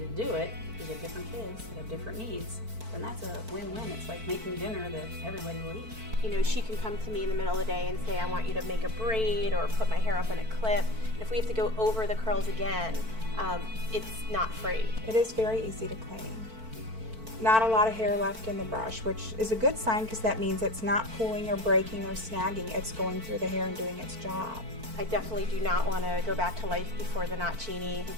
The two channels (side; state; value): left; late; 4.5 ms